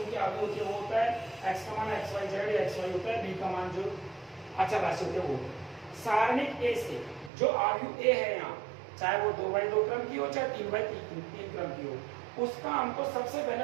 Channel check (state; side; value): drops out; left; at 7.3 s